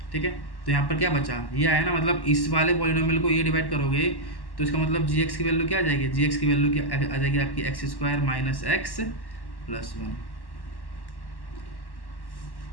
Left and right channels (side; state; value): right; late; 1.1 ms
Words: ठीक है। तो यहाँ पर क्या बचा, ये आया ना, मतलब इस वाले पॉलिनोमियल को ये डिवाइड करोगे तो इसका मतलब gx की वैल्यू क्या आ जाएगी, gx की वैल्यू क्या आ जाएगी आपकी x square minus x plus 1।